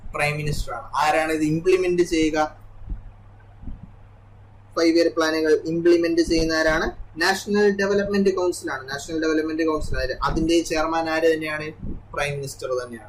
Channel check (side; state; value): both; identical; correlation 1.00